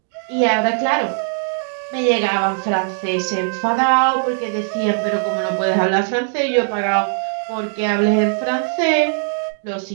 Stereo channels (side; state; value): left; silent; digital silence